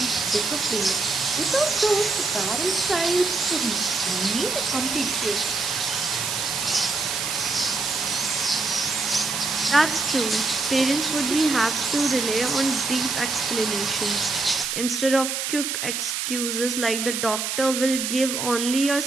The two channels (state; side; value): noise; right; hiss, 2 dB below the sound